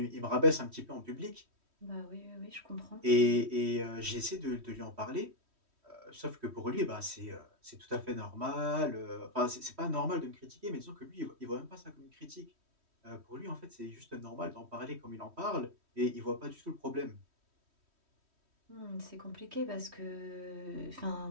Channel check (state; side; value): late; left; 3.1 ms